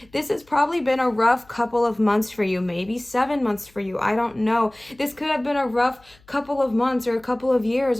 this has probably been a rough couple of months for you, maybe 7 months for you. I don't know. This could have been a rough couple of months or a couple of years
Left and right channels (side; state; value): left; noise; hum, 30 dB below the sound